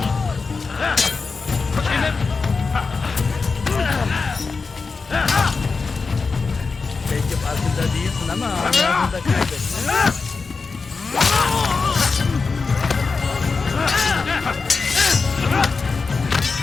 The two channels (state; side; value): quieter; right; 4.5 dB